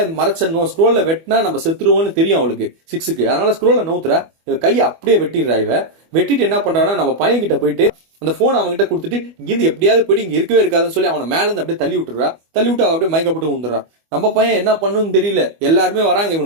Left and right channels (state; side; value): late; left; 25 ms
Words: மறைச்சணும், ஸ்க்ரோல்ல வெட்டினா நம்ம செத்துருவோம்னு தெரியும் அவளுக்கு 6க்கு. அதனால ஸ்க்ரோலை நவுத்துறா. கையை அப்படியே வெட்டிடுறா. இவ வெட்டிட்டு என்ன பண்றான்னா, நம்ம பையன் கிட்ட போயிட்டு அந்த போன் அவங்க கிட்ட கொடுத்துட்டு இங்கிருந்து எப்படியாவது போயிட்டு இங்க இருக்கவே இருக்காதுன்னு சொல்லி அவனை மேல இருந்து அப்படியே தள்ளி விட்டுறா. தள்ளி விட்டு அவ அப்படியே மயக்கப்பட்டு விழுந்துடுறா. நம்ம பையன் என்ன பண்ணுன்னு தெரியல, எல்லாருமே வராங்க